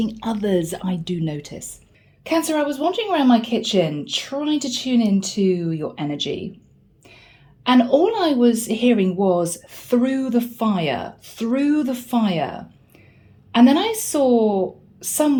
others, I do notice. Cancer, I was wandering around my kitchen trying to tune into your energy. And all I was hearing was through the fire, through the fire. And then I saw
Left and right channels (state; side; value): identical; both; correlation 1.00